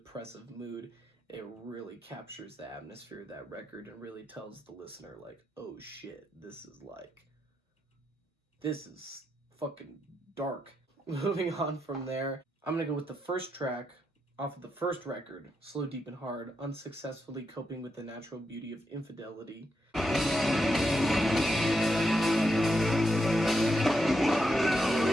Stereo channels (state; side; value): normal; both; correlation 0.83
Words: mood. It really captures the atmosphere of that record and really tells the listener, like, oh shit, this is fucking dark. Moving on from there, I'm gonna go with the first track off of the first record, Slow, Deep, and Hard, Unsuccessfully Coping with the Natural Beauty of Infidelity.